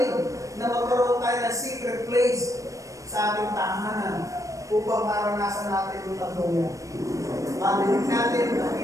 na magkaroon tayo ng secret place sa ating tahanan upang maranasan natin yung tatlong yan. Marinig natin ang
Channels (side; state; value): left; late; 0.16 ms